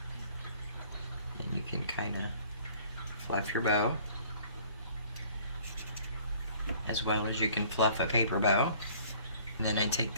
Then you can kind of fluff your bow, as well as you can fluff a paper bow. And then I take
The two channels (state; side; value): inverted; both; correlation -0.54